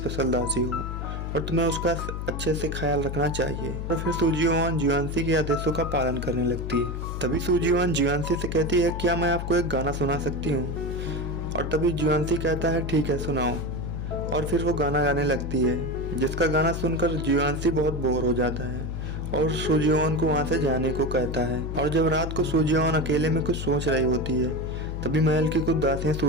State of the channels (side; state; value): left; noise; hum, 5 dB below the sound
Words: दासी हो और तुम्हें उसका अच्छे से ख्याल रखना चाहिए। और फिर सूजियोन जियोंसी के आदेशों का पालन करने लगती है। तभी सूजियोन जियोंसी से कहती है, क्या मैं आपको एक गाना सुना सकती हूँ? और तभी जियोंसी कहता है, ठीक है सुनाओ। और फिर वो गाना गाने लगती है, जिसका गाना सुनकर जियोंसी बहुत बोर हो जाता है और सूजियोन को वहाँ से जाने को कहता है। और जब रात को सूजियोन अकेले में कुछ सोच रही होती है, तभी महल की कुछ दासियां